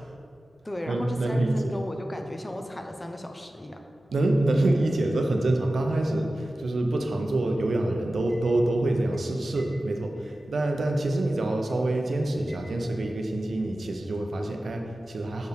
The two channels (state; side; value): normal; both; correlation 0.95